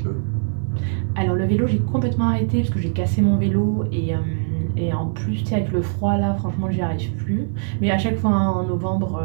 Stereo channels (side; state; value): left; silent; digital silence